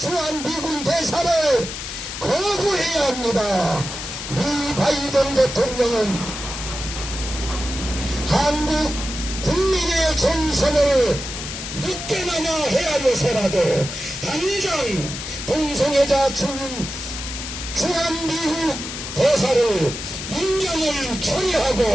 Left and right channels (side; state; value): left; noise; hiss, 7 dB below the sound